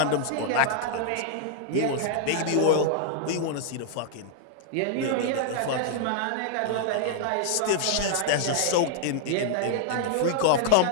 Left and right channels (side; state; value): both; different; correlation -0.01